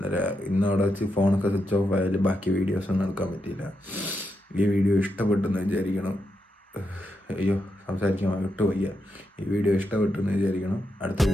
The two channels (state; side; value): normal; both; correlation 0.84